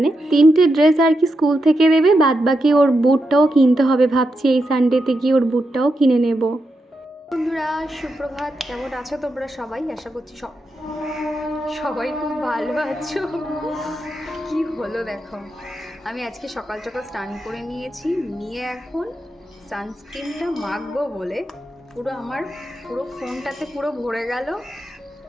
3টে ড্রেস আর কি স্কুল থেকে দেবে, বাদ বাকি ওর বুটটাও কিনতে হবে। ভাবছি এই সানডেতে গিয়ে ওর বুটটাও কিনে নেব। বন্ধুরা সুপ্রভাত, কেমন আছো তোমরা সবাই? আশা করছি সবাই খুব ভালো আছো। কি হলো দেখো, আমি আজকে সকাল সকাল স্নান করে নিয়েছি, নিয়ে এখন সানস্ক্রিনটা মাখবো বলে আমার ফোনটাতে পুরো ভরে গেল,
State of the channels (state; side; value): normal; both; correlation 0.86